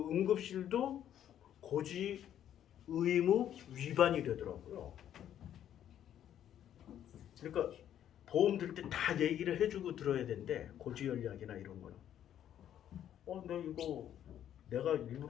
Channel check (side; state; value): right; quieter; 10.5 dB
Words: 고지 의무 위반이 되더라고요. 그러니까 보험 들 때 다 얘기를 해주고 들어야 되는데 고지혈약이나 이런 거는 나 이거 내가